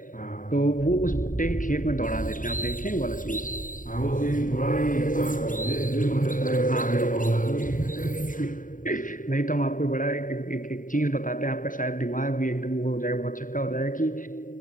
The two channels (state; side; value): late; right; 0.39 ms